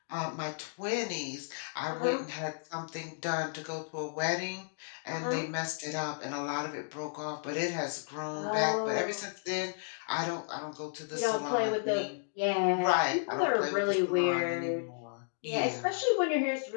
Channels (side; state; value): right; silent; digital silence